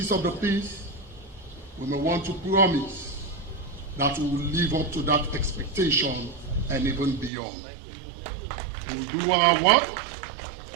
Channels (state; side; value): drops out; left; at 7.3 s